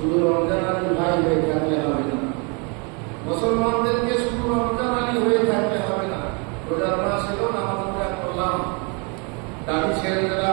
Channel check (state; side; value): quieter; left; 33.3 dB